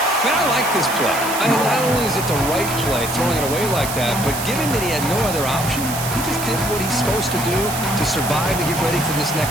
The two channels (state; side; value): noise; right; hiss, 7 dB below the sound